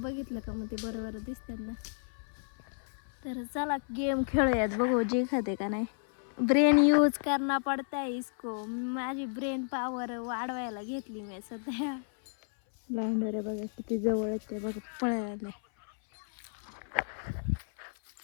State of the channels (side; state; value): right; silent; 56 dB below the other